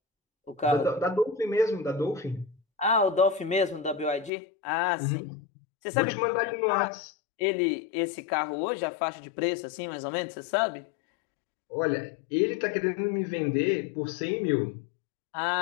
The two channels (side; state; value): right; drops out; at 4.3 s